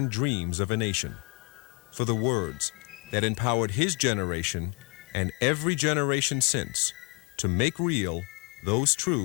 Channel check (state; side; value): quieter; right; 32.6 dB